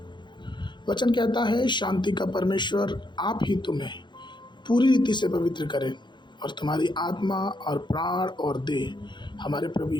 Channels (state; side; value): late; right; 0.22 ms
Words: वचन कहता है, शांति का परमेश्वर आप ही तुम्हें पूरी रीति से पवित्र करे और तुम्हारी आत्मा और प्राण और देह हमारे प्रभु